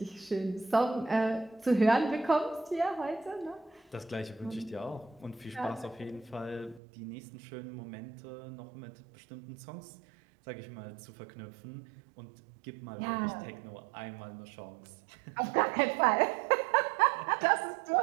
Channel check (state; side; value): drops out; left; at 6.8 s